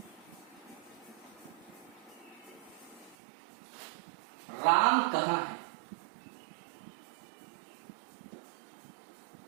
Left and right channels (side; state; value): left; drops out; at 3.2 s